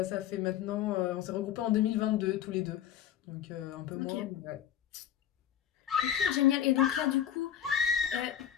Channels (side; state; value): right; quieter; 10.2 dB